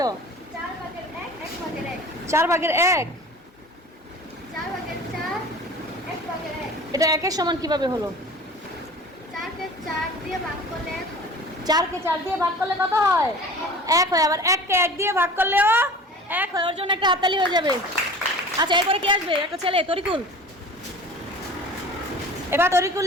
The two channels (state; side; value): normal; both; correlation 0.40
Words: 4 ভাগের 1 1 ভাগের 1, 4 ভাগের 1। 4 ভাগের 4 1 ভাগের 1। এটা একের সমান কিভাবে হলো? 4 কে 4 দিয়ে ভাগ করলে 1 হয়। 4 কে 4 দিয়ে ভাগ করলে কত হয়? 1 হয়। আবার 1 কে 1 দিয়ে ভাগ করলেও 1 হয়। ওর জন্য একটা হাততালি হয়ে যাবে। আচ্ছা, এরপরে কি আসবে? একটা ছেলে, তরিকুল। এবার তরিকুল